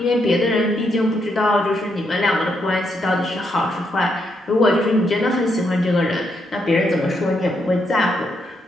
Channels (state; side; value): normal; both; correlation 0.78